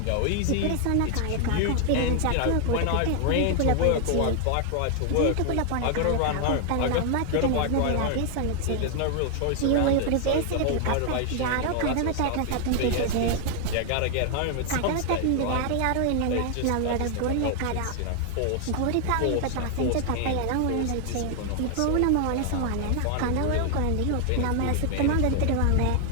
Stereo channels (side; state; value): both; different; correlation 0.00